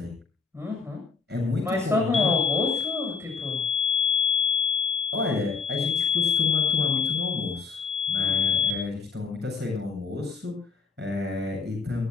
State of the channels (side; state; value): right; quieter; 5.2 dB